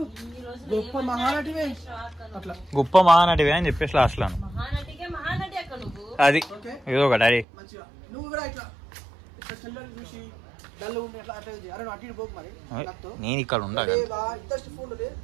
గొప్ప మహానటివే అట్లా గొప్ప మహానటివే అని చెప్పేసి లాస్ట్ లో అది ఏదో ఒకటి అది నువ్వు కూడా ఇట్లా చూసి నేను ఇక్కడ ఉండాలి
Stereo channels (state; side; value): drops out; left; at 7.5 s